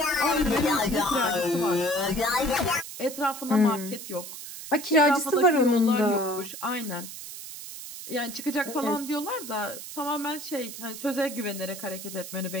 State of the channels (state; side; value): noise; right; hiss, 11 dB below the sound